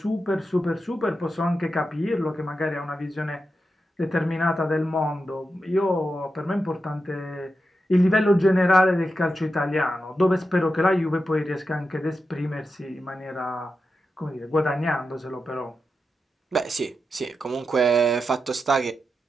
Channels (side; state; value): both; normal; correlation 0.89